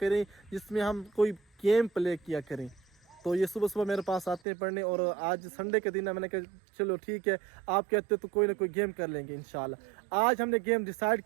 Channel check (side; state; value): left; drops out; at 4.4 s